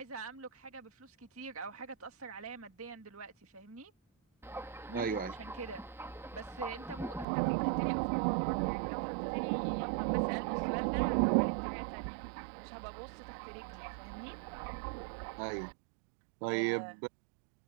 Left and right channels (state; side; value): drops out; left; at 7.2 s